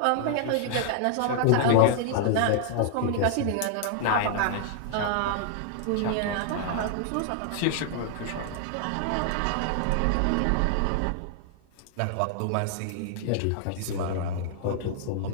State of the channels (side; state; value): both; different; correlation 0.00